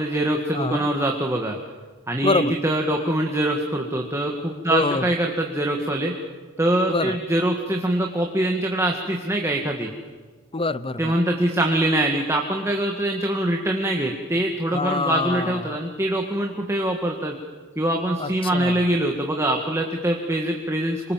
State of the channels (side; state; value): both; normal; correlation 0.57